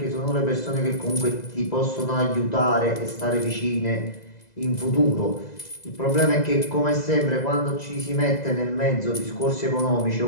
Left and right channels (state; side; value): late; right; 2.0 ms